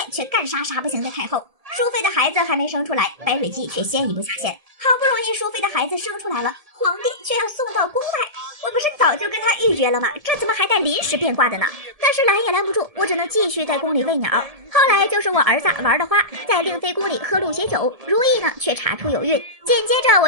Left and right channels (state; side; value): late; left; 1.7 ms